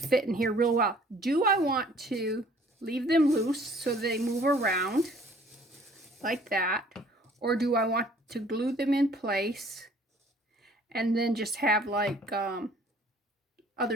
in here real well. Do I want to leave them loose so they move around like that? Or do I want to glue them in place and then just have like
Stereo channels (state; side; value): normal; both; correlation 0.56